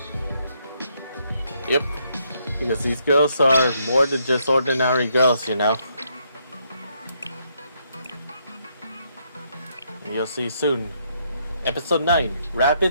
Yep, because these girls are more than just ordinary girls, you know. You'll see soon. Episode 9,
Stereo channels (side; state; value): both; inverted; correlation -0.74